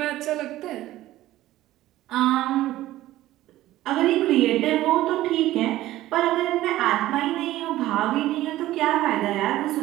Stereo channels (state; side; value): quieter; left; 15.3 dB